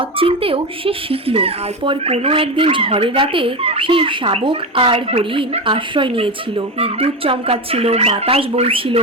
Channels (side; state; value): both; normal; correlation 0.18